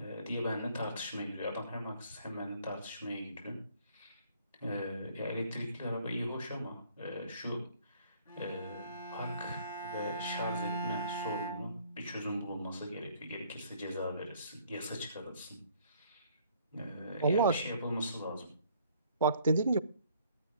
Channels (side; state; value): both; inverted; correlation -0.60